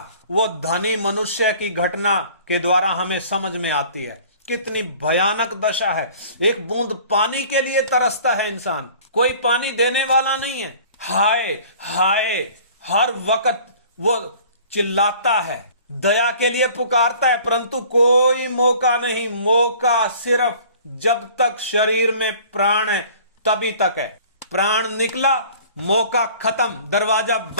वो धनी मनुष्य की घटना के द्वारा हमें समझ में आती है। कितनी भयानक दशा है। एक बूंद पानी के लिए तरसता है इंसान, कोई पानी देने वाला नहीं है। हाय हाय हर वक्त वो चिल्लाता है, दया के लिए पुकारता है, परंतु कोई मौका नहीं। मौका सिर्फ जब तक शरीर में प्राण है तभी तक है। प्राण निकला, मौका खत्म, दरवाजा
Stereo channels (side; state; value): both; inverted; correlation -0.49